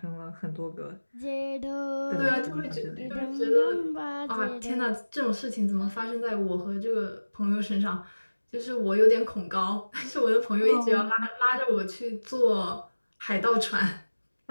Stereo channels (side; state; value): both; inverted; correlation -1.00